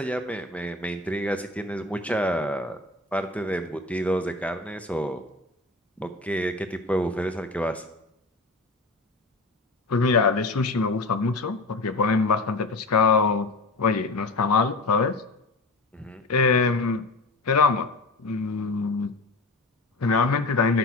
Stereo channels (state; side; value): quieter; right; 3.2 dB